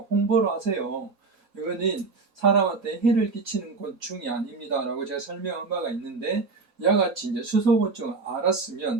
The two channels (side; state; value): left; quieter; 4.2 dB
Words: 홍보를 하세요. 이거는 사람한테 해를 끼치는 곤충이 아닙니다라고 제가 설명한 바가 있는데 이와 같이 이제 수소곤충을